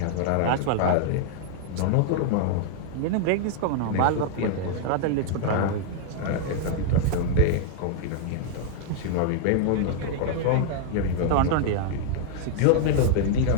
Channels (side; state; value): both; different; correlation -0.01